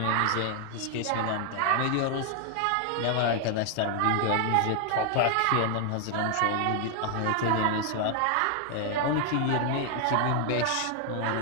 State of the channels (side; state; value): both; different; correlation 0.00